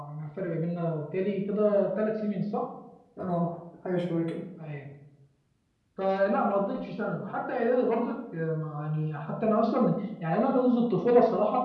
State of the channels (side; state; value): both; identical; correlation 1.00